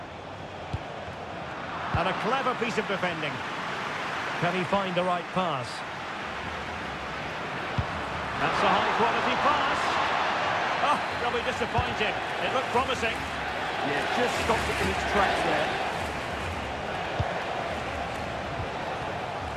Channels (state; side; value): identical; both; correlation 1.00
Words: And a clever piece of defending. Can he find the right pass? That's a high-quality pass. Oh, they'll be disappointed. It looked promising. Yeah, just stopped it in its tracks there.